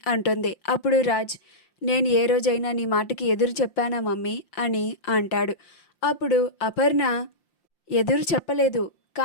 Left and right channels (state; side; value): late; right; 5.7 ms